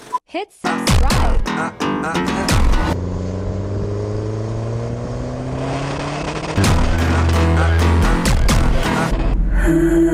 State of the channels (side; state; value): both; identical; correlation 1.00